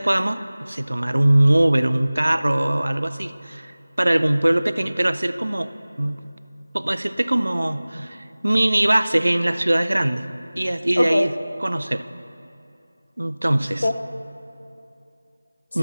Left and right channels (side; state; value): both; inverted; correlation -0.99